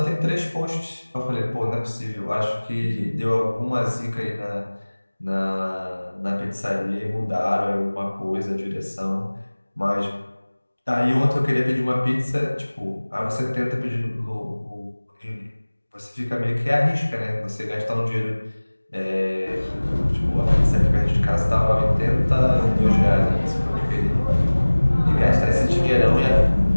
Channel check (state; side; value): inverted; both; correlation -1.00